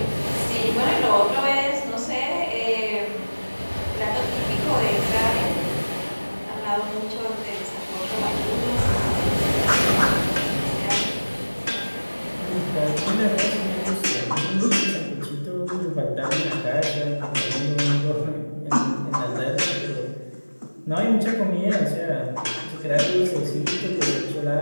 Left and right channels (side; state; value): both; inverted; correlation -1.00